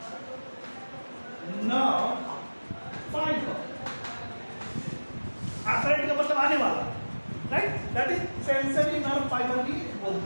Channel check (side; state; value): both; inverted; correlation -1.00